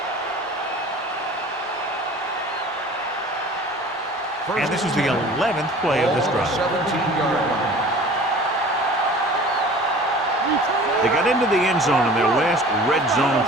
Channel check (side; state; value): both; normal; correlation 0.44